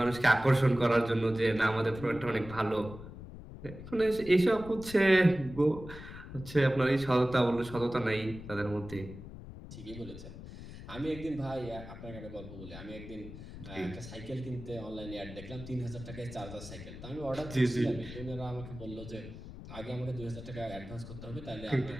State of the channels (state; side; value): noise; left; rumble, 13 dB below the sound